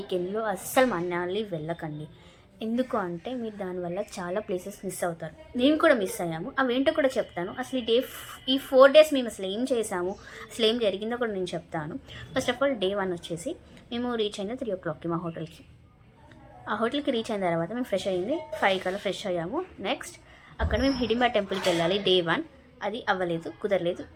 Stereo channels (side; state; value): both; identical; correlation 1.00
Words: అస్సలు మనాలి వెళ్ళకండి. ఎందుకు అంటే మీరు దానివల్ల చాలా ప్లేసెస్ మిస్ అవుతారు. నేను కూడా మిస్ అయ్యాము. అవేంటో కూడా చెప్తాను. అసలు ఈ 4 days మేము అసలు ఏం చేసాము, అసలు ఏం జరిగిందో కూడా నేను చెప్తాను. ఫస్ట్ ఆఫ్ ఆల్ Day 1 వచ్చేసి మేము రీచ్ అయింది 3 o'clockకి మా హోటల్కి. ఆ హోటల్కి రీచ్ అయిన తర్వాత మేము ఫ్రెష్ అయ్యింది 5 కల్లా ఫ్రెష్ అయ్యాము. నెక్స్ట్ అక్కడ మేము హిడింబా టెంపుల్కి వెళ్ళాలి. Day 1 అది అవ్వలేదు, కుదరలేదు,